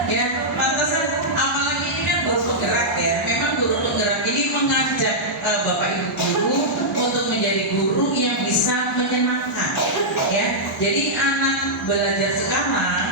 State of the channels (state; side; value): normal; both; correlation -0.09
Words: Ya, pantasan apalagi ini kan guru penggerak ya. Memang guru penggerak ini mengajak Bapak Ibu guru untuk menjadi guru yang bisa menyenangkan ya. Jadi anak belajar sekarang,